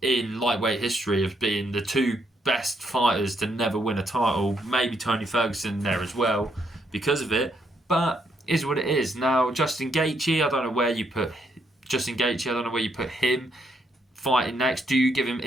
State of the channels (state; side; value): normal; both; correlation 0.75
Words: in lightweight history of being the two best fighters to never win a title. Maybe Tony Ferguson there as well because of it. But is what it is. Now, Justin Gaethje, I don't know where you put Justin Gaethje. I don't know where you put him fighting next. Do you give him